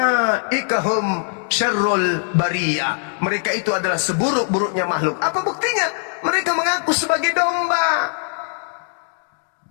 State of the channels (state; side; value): silent; right; 57 dB below the other